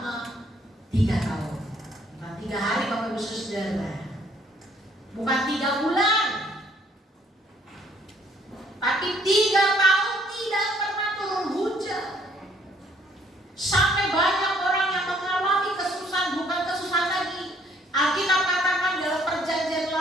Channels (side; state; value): both; normal; correlation 0.63